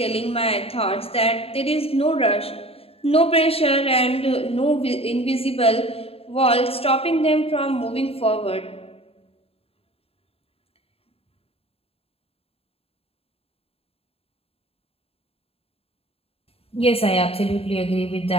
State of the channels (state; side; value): late; right; 0.28 ms